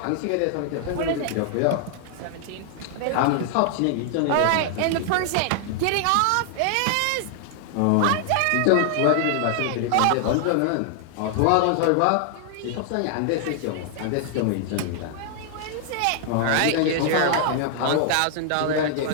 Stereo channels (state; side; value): different; both; correlation 0.00